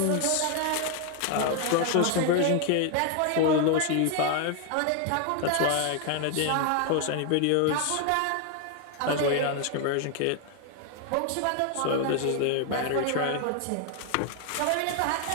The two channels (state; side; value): different; both; correlation 0.00